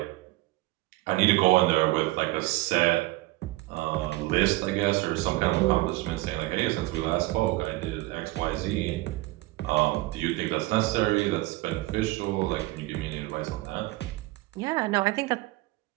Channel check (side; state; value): left; quieter; 20.2 dB